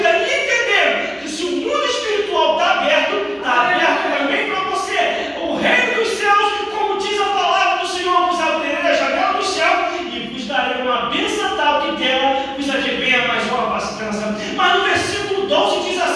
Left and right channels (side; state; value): both; identical; correlation 1.00